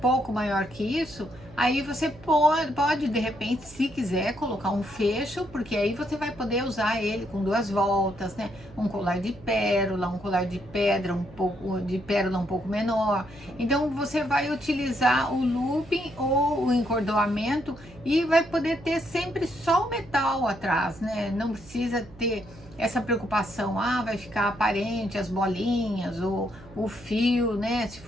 maior que isso, aí você pode de repente, se quiser, colocar um fecho, porque aí você vai poder usar ele com 2 voltas, né? Um colar de pérola, um colar de pedra, um pouco de pérola um pouco menor. Então você vai utilizar o looping ou o encordoamento e vai poder ter sempre só o metal atrás, né? Não precisa ter essa preocupação, vai ficar aparente as bolinhas ou o fio, né? Se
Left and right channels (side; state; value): right; noise; hum, 21 dB below the sound